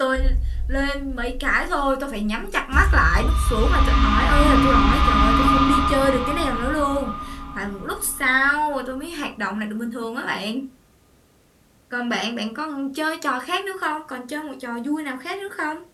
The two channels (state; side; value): identical; both; correlation 1.00